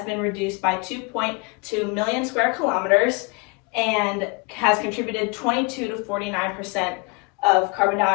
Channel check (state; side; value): quieter; right; 29.8 dB